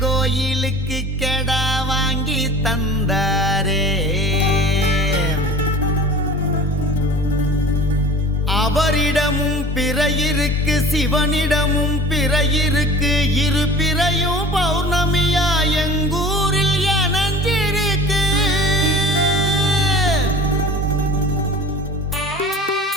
கோயிலுக்கு கெடா வாங்கி தந்தாரே. அவரிடமும் பிறையிருக்கு, சிவனிடமும் பிறையிருக்கு. இரு பிறையும் பௌர்ணமியா எங்கூரில் இணைஞ்சிருக்கு.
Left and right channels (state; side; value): normal; both; correlation 0.41